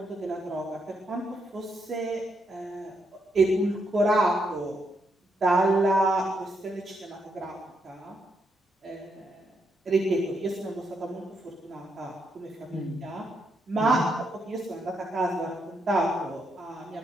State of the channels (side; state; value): both; normal; correlation 0.79